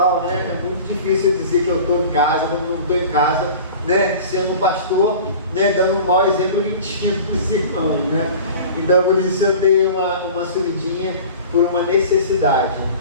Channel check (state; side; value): inverted; both; correlation -0.40